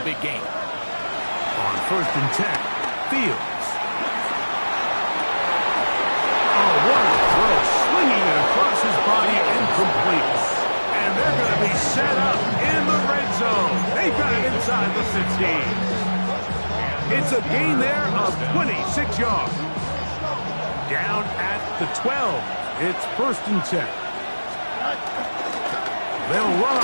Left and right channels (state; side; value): inverted; both; correlation -1.00